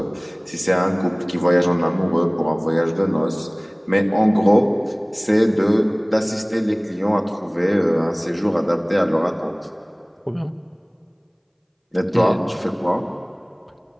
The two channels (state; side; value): identical; both; correlation 1.00